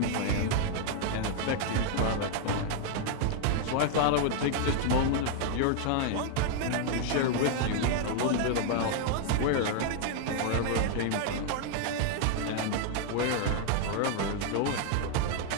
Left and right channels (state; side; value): different; both; correlation 0.00